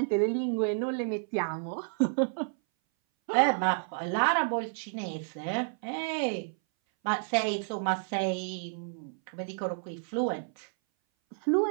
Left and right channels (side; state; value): left; silent; 57 dB below the other